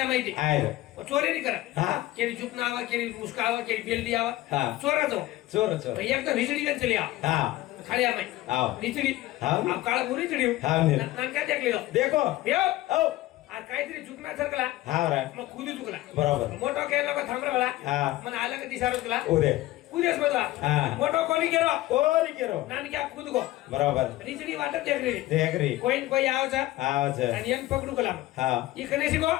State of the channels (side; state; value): right; quieter; 16.8 dB